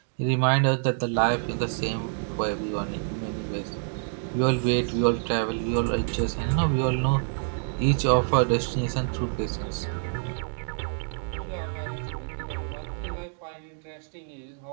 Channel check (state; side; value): silent; left; digital silence